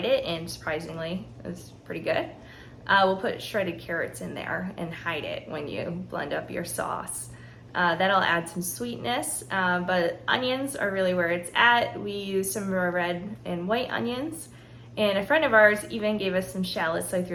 it and surprisingly it's pretty good. We'll put shredded carrots in there and hide it when you blend up your sauce. That'll add some sweetness, but onions are really where it's at. We use some red and white onions, and a friend of ours even gave us some shallots, so I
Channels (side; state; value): both; identical; correlation 1.00